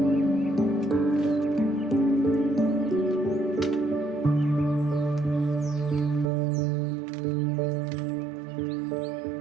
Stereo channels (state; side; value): drops out; left; at 6.3 s